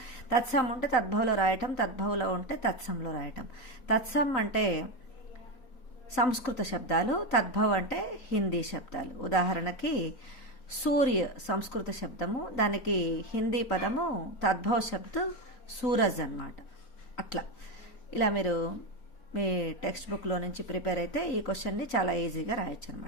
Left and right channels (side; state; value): right; late; 3.9 ms